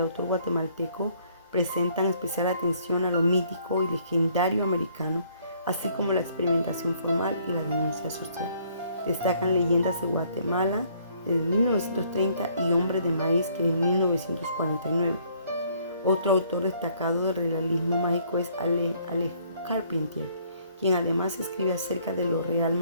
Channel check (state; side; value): inverted; both; correlation -0.63